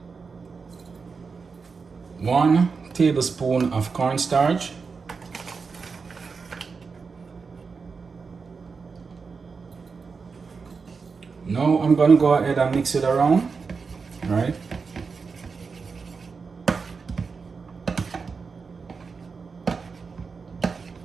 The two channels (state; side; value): quieter; left; 5.0 dB